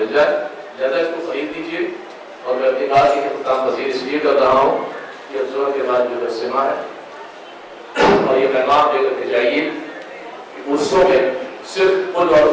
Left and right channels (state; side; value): identical; both; correlation 1.00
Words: جائے. زیادہ اس کو خرید لیجیے. اور میں اپنی بات کی خطاب مزید اس لیے کر رہا ہوں کہ افزور کے بعد جو اجتماع ہے اور یہ پیغام دے کر کے جائیے کہ عرصوں میں صرف قل اور